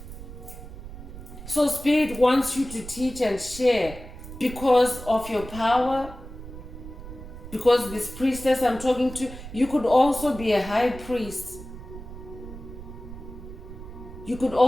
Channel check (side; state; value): right; noise; rumble, 13 dB below the sound